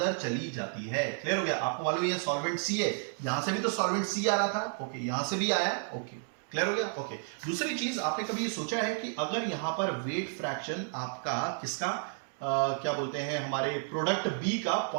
चली जाती है, क्लियर हो गया। आपको मालूम है सॉल्वेंट सी है, यहां से भी तो सॉल्वेंट सी आ रहा था, ओके, यहां से भी आया, ओके, क्लियर हो गया, ओके। दूसरी चीज, आपने कभी सोचा है कि अगर यहां पर वेट फ्रैक्शन आपका किसका, क्या बोलते हैं, हमारे प्रोडक्ट बी का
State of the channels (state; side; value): silent; left; 57 dB below the other